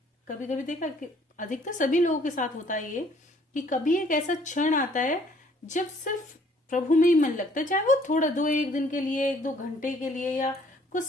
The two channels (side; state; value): both; normal; correlation 0.61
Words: कभी कभी देखा कि अधिकतर सभी लोगों के साथ होता है ये, कि कभी एक ऐसा क्षण आता है जब सिर्फ प्रभु में ही मन लगता है, चाहे वो थोड़ा 1 दिन के लिए, 1-2 घंटे के लिए, या कुछ